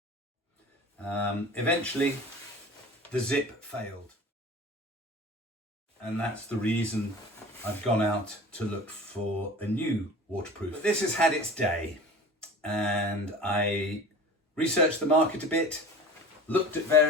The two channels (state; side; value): normal; both; correlation 0.38